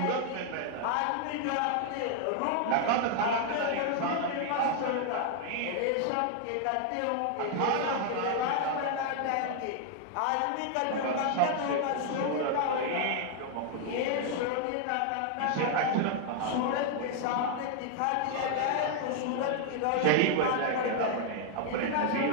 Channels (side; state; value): both; different; correlation 0.00